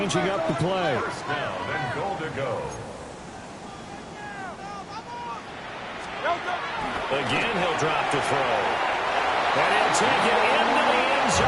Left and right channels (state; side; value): identical; both; correlation 1.00